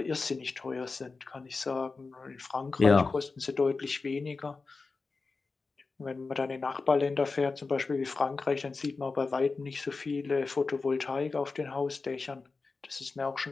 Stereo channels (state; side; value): quieter; right; 4.1 dB